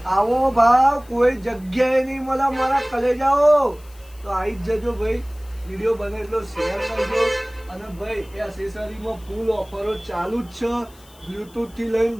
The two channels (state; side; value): noise; left; hiss, 26 dB below the sound